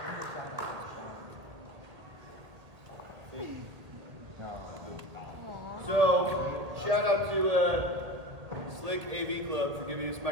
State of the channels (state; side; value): late; left; 1.8 ms